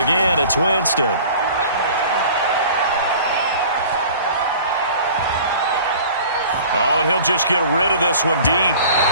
it's Winston. Oh, and he'll just get rid of this one deep.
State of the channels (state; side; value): inverted; both; correlation -0.45